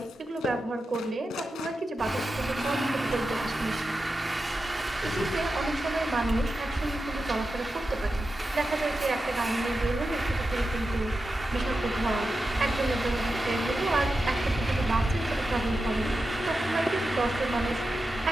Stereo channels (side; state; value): both; normal; correlation 0.91